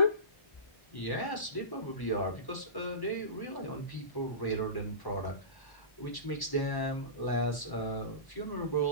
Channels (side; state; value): right; late; 1.1 ms